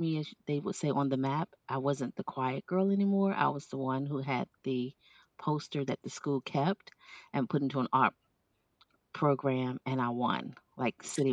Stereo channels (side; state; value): both; identical; correlation 1.00